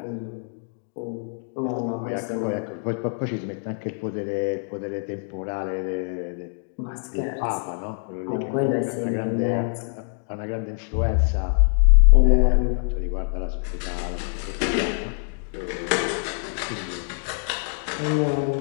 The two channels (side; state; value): right; silent; 61 dB below the other